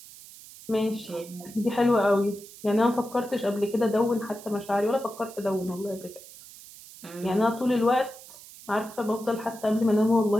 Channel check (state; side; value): noise; right; hiss, 18 dB below the sound